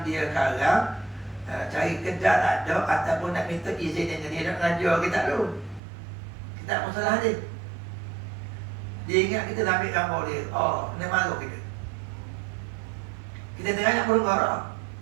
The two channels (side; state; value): left; drops out; at 5.8 s